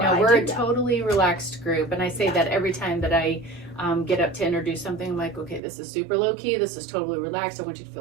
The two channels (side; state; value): left; drops out; at 5.6 s